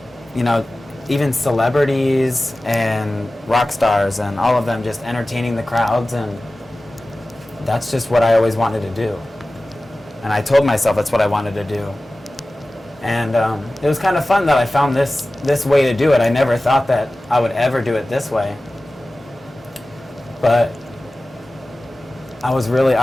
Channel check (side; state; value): both; normal; correlation 0.96